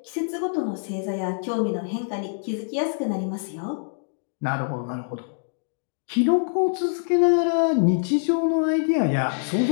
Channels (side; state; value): right; silent; digital silence